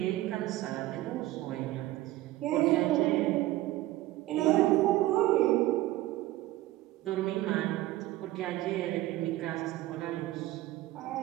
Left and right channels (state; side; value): quieter; left; 16.6 dB